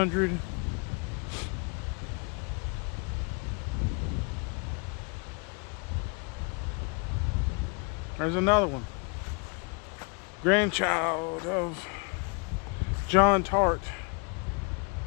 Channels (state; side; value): quieter; right; 34.3 dB